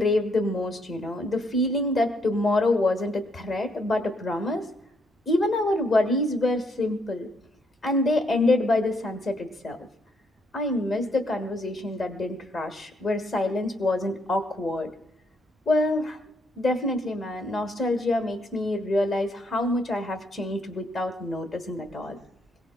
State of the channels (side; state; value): both; normal; correlation 0.73